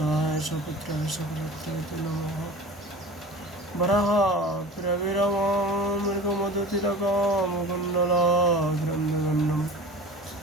सपुत्राय सकलत्राय नमः वराहप्रविरमामृगमदतिलकामकुण्डलाग्रन्दगन्नं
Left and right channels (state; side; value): normal; both; correlation 0.37